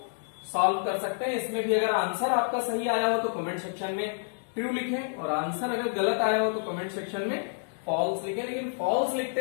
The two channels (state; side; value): silent; right; digital silence